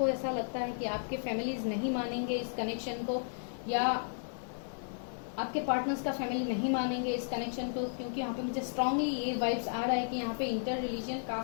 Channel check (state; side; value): silent; right; digital silence